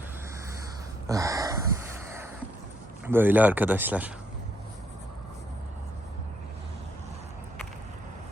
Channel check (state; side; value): normal; both; correlation 0.73